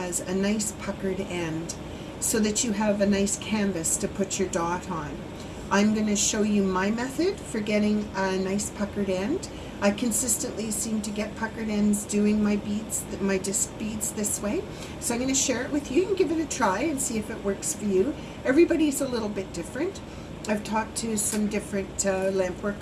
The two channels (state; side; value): identical; both; correlation 1.00